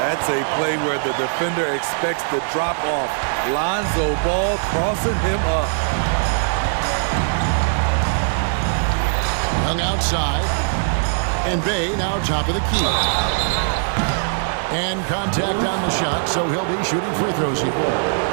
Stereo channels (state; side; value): silent; left; digital silence